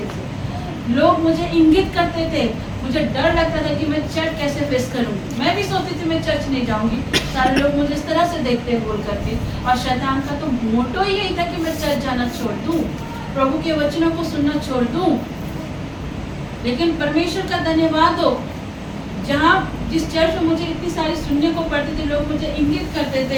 से लोग मुझे इंगित करते थे। मुझे डर लगता था कि मैं चर्च कैसे फेस करूंगी। मैं भी सोचती थी मैं चर्च नहीं जाऊंगी, सारे लोग मुझे इस तरह से देखते बोल करके। और शैतान का तो मोटो ही यही था कि मैं चर्च जाना छोड़ दूं, प्रभु के वचनों को सुनना छोड़ दूं। लेकिन परमेश्वर का धन्यवाद हो, जहाँ जिस चर्च में मुझे इतनी सारी सुनने को पड़ती थी, लोग मुझे इंगित करते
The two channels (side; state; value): both; identical; correlation 1.00